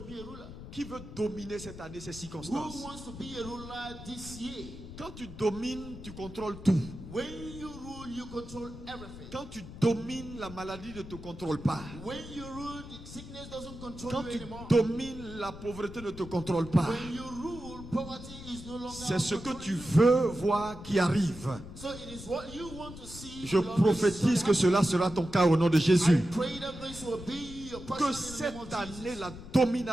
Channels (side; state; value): left; noise; rumble, 13 dB below the sound